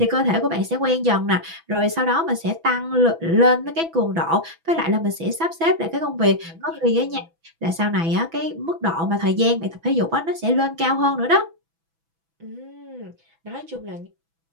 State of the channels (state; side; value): late; left; 6.1 ms